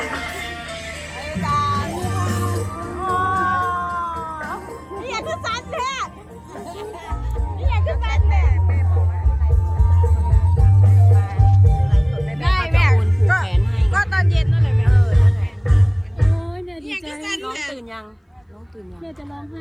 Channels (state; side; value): identical; both; correlation 1.00